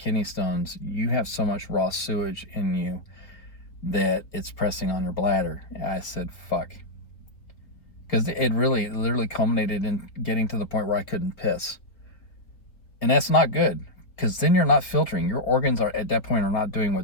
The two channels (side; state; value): right; late; 4.1 ms